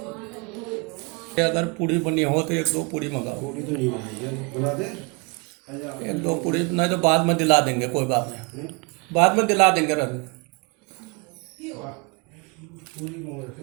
अगर पूड़ी बनी हो तो 1-2 पूड़ी मंगाओ। पूरी तो नहीं बनाई है, बना दे। 1-2 पूड़ी नहीं तो बाद में दिला देंगे, कोई बात नहीं, बाद में दिला देंगे। रख पूरी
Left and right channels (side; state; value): left; quieter; 31.5 dB